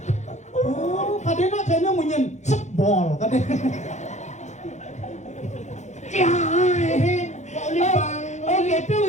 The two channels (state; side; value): late; right; 0.34 ms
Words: oh kadena kayaknya munyen sebol kadena Oh gitu